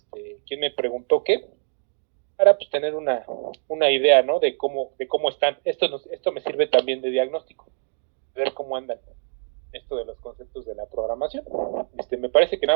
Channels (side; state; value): left; silent; 62 dB below the other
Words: quién me preguntó qué, para pues tener una idea, ¿no? De cómo están. Esto me sirve también de diagnóstico, ver cómo andan esto de los conceptos de la programación. Me parece que